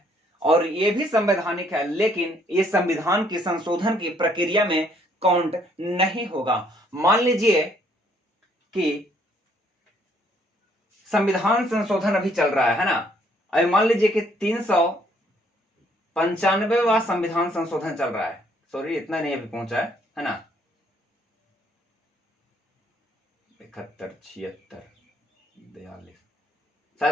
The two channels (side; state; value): both; normal; correlation 0.66